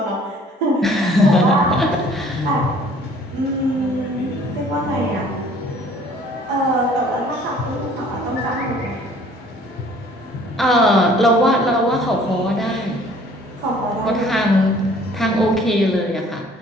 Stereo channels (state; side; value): normal; both; correlation 0.54